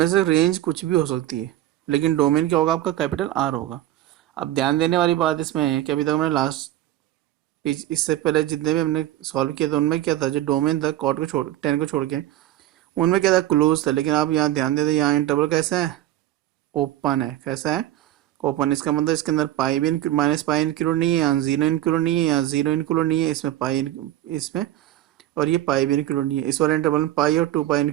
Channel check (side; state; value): left; quieter; 13.8 dB